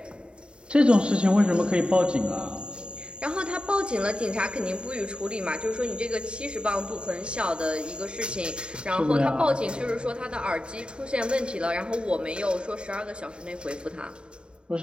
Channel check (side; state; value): left; late; 0.052 ms